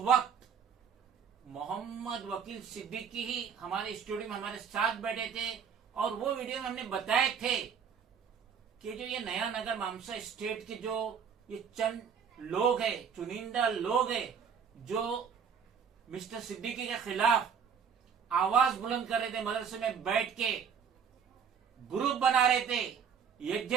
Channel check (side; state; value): left; quieter; 7.0 dB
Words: मोहम्मद वकील सिद्दीकी ही हमारे स्टूडियो में हमारे साथ बैठे थे, और वो वीडियो में हमने बताए थे कि जो ये नया नगर मामसा स्टेट के जो ये चंद लोग हैं, चुनिंदा लोग हैं, जो मिस्टर सिद्दीकी के खिलाफ आवाज बुलंद कर रहे थे, मदरसे में बैठ के ग्रुप बना रहे थे,